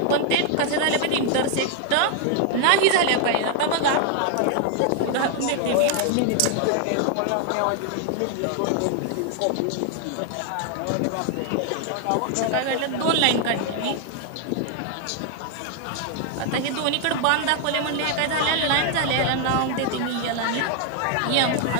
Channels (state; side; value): different; both; correlation 0.00